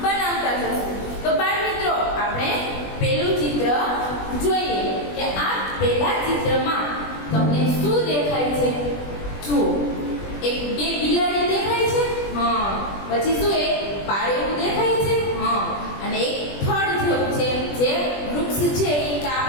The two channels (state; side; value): late; right; 20 ms